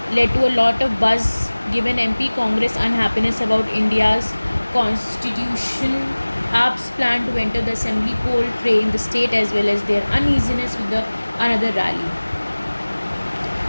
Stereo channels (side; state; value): both; inverted; correlation -1.00